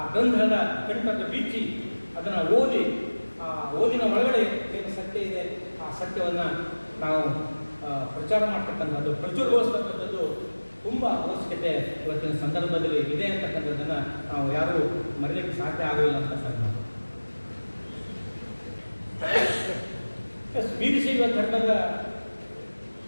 ಗ್ರಂಥದ ಕಂಠದ ಬೀಚಿ ಅದನ್ನು ಓದಿ, ಆ ಓದಿನ ಒಳಗಡೆ ಏನು ಸತ್ಯ ಇದೆ ಆ ಸತ್ಯವನ್ನು ನಾವು ಪ್ರಚಾರ ಮಾಡ್ತಕ್ಕಂಥದ್ದು, ಪ್ರಚುರಗೊಳಿಸ್ತಕ್ಕಂಥದ್ದು ತುಂಬ ಅವಶ್ಯಕತೆ ಇವತ್ತಿನ ಸಂದರ್ಭದಲ್ಲಿ ಇದೆ ಅಂತಕ್ಕಂಥದ್ದನ್ನು ನಾವು ಯಾರೂ ಮರೀಲಿಕ್ಕೆ ಸಾಧ್ಯ ಆಗಲಿಲ್ಲ ಅಂತ ಸರ್. ವೀರಶೈವ ಧರ್ಮದ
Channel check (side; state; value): both; inverted; correlation -1.00